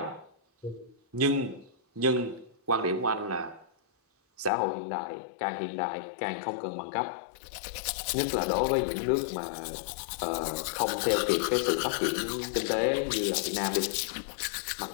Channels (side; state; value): right; drops out; at 4.5 s